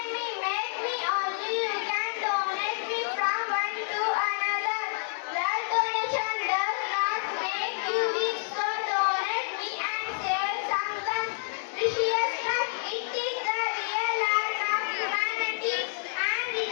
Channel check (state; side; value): silent; right; 59 dB below the other